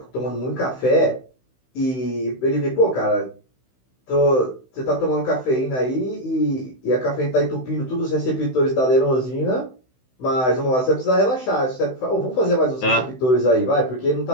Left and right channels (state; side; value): late; right; 16 ms